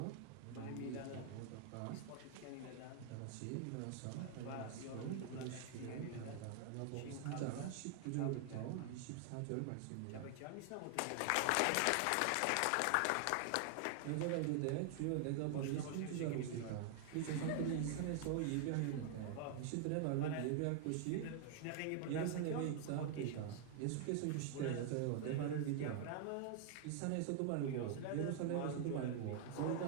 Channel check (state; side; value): different; both; correlation 0.00